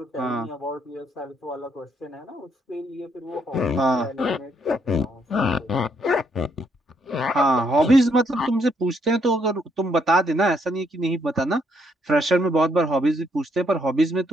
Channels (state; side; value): normal; both; correlation 0.72